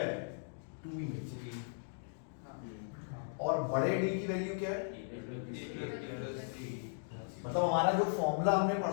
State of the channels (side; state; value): right; silent; digital silence